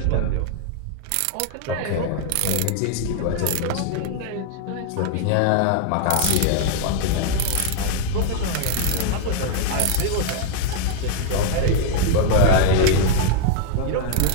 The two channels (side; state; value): both; different; correlation 0.00